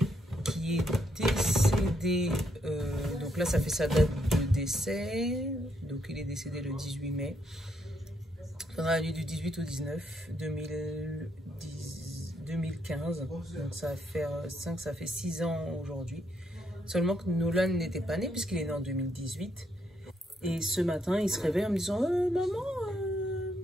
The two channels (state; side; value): normal; both; correlation 0.76